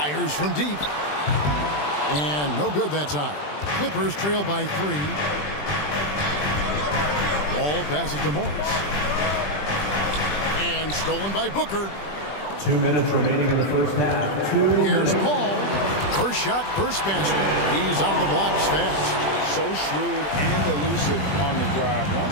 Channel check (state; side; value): late; right; 20 ms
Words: from deep. And no good that time. Clippers trail by 3. Ball passes to Morris. And stolen by Booker. 2 minutes remaining in the first half. Here's Paul. First shot, first basket. He's on the blocks fast. So shrewd and elusive on the drive.